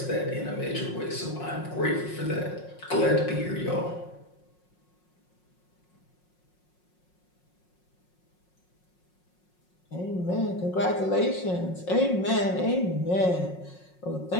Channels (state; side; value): late; right; 5.5 ms